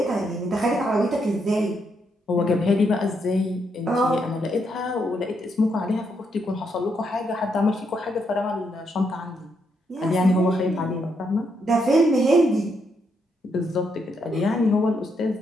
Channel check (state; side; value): normal; both; correlation 0.78